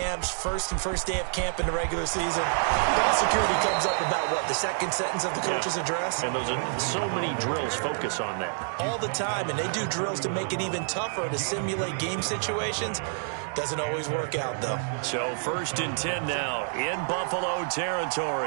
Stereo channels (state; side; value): silent; left; digital silence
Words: first day of camp in the regular season, ball security comes up about what, the second sentence of the coach's address? And those are so many drills focus on that. All the time, and they do drills to make it even tougher to simulate game situations. Doesn't always work out, though. So 1st and 10 now in Buffalo